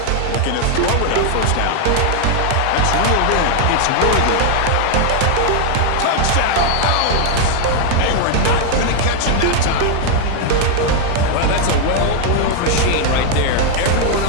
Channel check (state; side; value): different; both; correlation 0.00